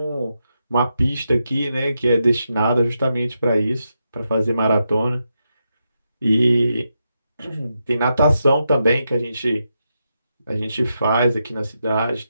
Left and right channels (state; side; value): inverted; both; correlation -0.85